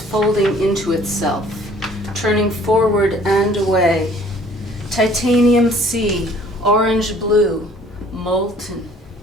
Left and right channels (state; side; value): normal; both; correlation 0.55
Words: into itself, turning forward and away. Titanium sea, orange blue, molten.